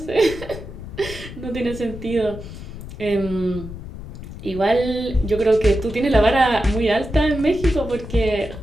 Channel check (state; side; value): noise; left; rumble, 12 dB below the sound